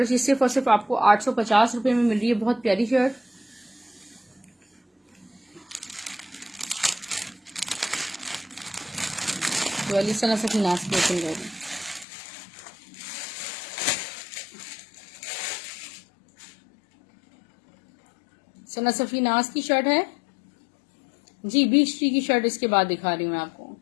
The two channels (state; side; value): drops out; right; at 12.1 s